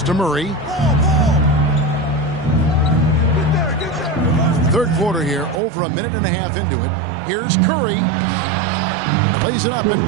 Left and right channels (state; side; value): drops out; left; at 5.6 s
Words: to Murray. Third quarter here, over a minute and a half into it. Here's Curry. Plays it up and